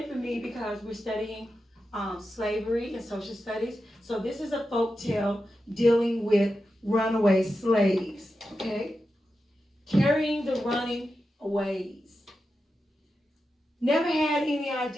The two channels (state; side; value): normal; both; correlation 0.90